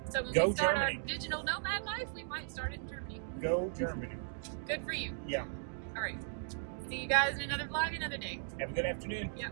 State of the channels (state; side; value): silent; left; digital silence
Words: So when Go we start Germany. our digital nomad life, we might start it in Germany. Go Germany. Good for you. Yeah. All right. See you guys in another vlog another day. Have a good afternoon. Yeah.